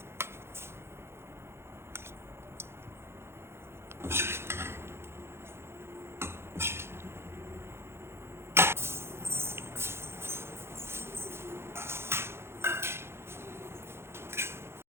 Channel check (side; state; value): left; late; 0.12 ms